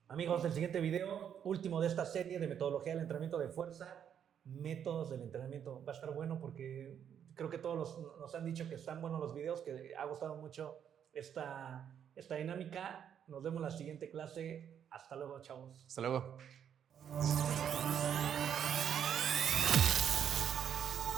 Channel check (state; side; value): quieter; left; 8.7 dB